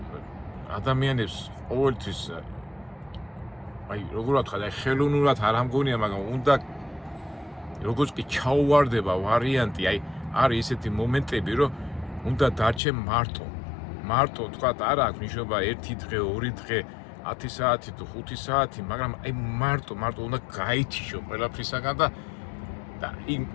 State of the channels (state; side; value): drops out; right; at 12.8 s